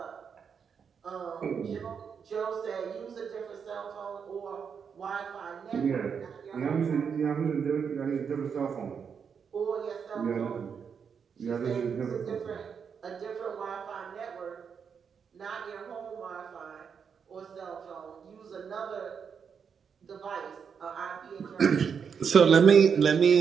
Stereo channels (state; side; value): quieter; left; 6.7 dB